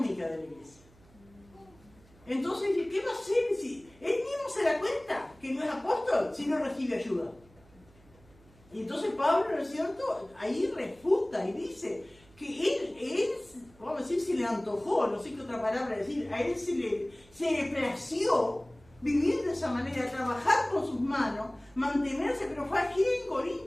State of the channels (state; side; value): noise; right; hum, 27 dB below the sound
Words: de la iglesia. Entonces, ¿qué va a hacer si él mismo se da cuenta que no es apóstol si no recibe ayuda? Y entonces Pablo, ¿no es cierto?, ahí refuta y dice que él, vamos a decir, se le antojó, no sé qué otra palabra decir, a él se le plació vivir de esa manera, trabajar con sus manos, mantenerse, pero fue aquí en